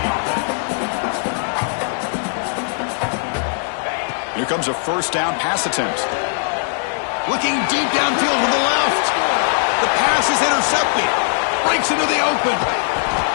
Here comes a 1st down pass attempt. Looking deep downfield with the left. The pass is intercepted. Breaks into the open.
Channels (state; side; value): silent; right; digital silence